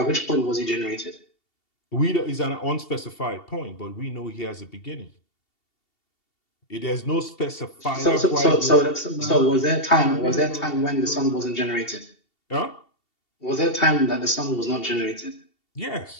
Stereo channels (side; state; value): right; late; 2.7 ms